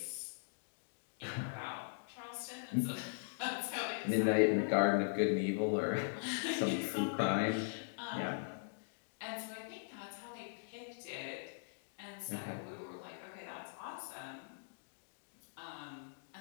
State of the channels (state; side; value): silent; right; digital silence